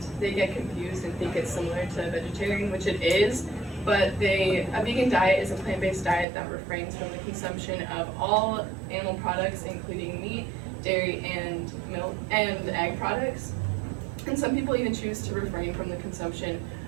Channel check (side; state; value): left; drops out; at 6.2 s